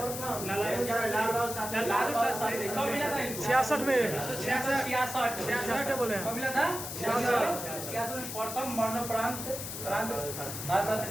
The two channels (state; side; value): noise; left; hiss, 7 dB below the sound